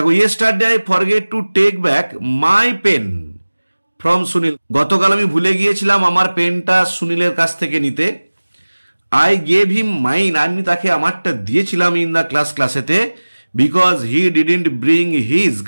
yesterday I forget to take back my pen from Sunil. গতকাল আমি ভুলে গিয়েছিলাম আমার পেনটা সুনীলের কাছ থেকে নিতে। আই গেভ হিম মাইন, আমি তাকে আমারটা দিয়েছিলাম ইন দ্য ক্লাসেতে, because he didn't bring his,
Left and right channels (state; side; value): inverted; both; correlation -1.00